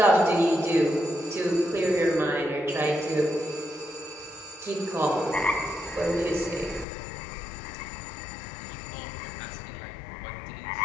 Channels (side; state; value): right; drops out; at 6.9 s